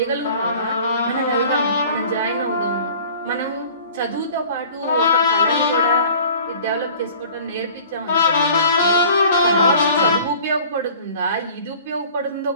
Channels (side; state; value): both; inverted; correlation -0.47